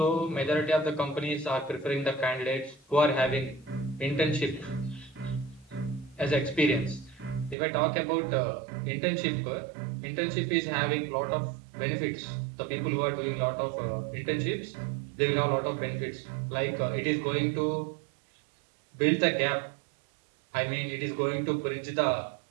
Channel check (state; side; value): drops out; left; at 7.6 s